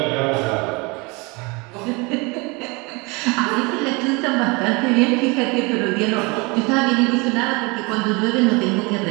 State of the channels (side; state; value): left; quieter; 27.4 dB